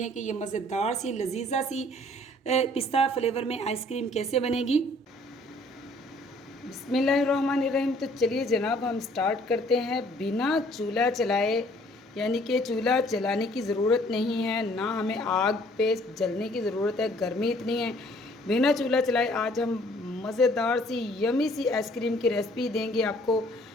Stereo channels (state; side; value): normal; both; correlation 0.58